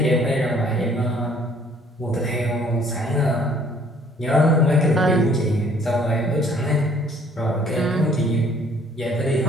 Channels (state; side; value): normal; both; correlation 0.59